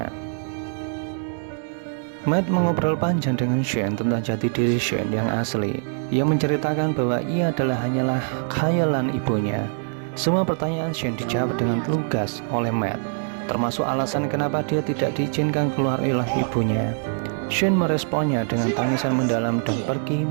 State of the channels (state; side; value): silent; left; 59 dB below the other